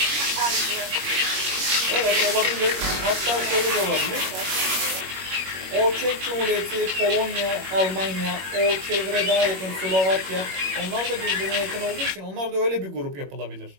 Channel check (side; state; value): left; late; 21 ms